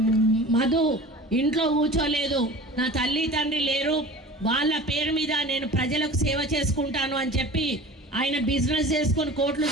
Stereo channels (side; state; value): both; normal; correlation 0.39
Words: మధు ఇంట్లో కూర్చోలేదు. నా తల్లి తండ్రి లేరు, వాళ్ళ పేరు మీద నేను ప్రజలకు సేవ చేసుకుంటాను అని చెప్పి ఆయన బిజినెస్ చేసుకొని కోట్లు